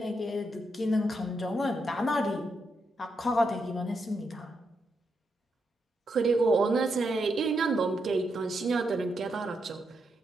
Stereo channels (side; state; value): both; normal; correlation 0.82